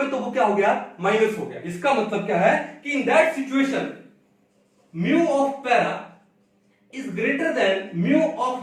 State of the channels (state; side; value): identical; both; correlation 1.00